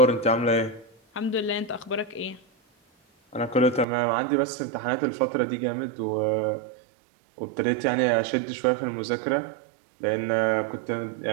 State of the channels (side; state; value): left; drops out; at 3.9 s